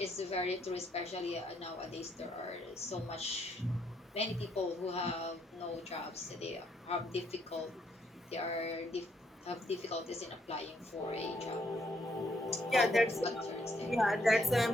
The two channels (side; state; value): both; normal; correlation 0.72